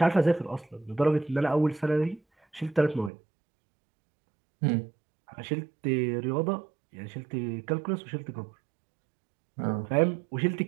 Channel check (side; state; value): left; drops out; at 3.1 s